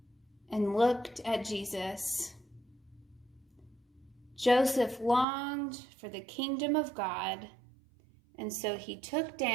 and looked at Jesus. Joseph longed for the kingdom of God, and so he took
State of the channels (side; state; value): left; drops out; at 5.2 s